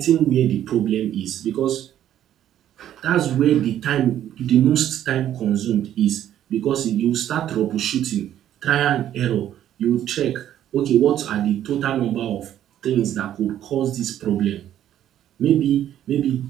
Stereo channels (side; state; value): left; quieter; 11.3 dB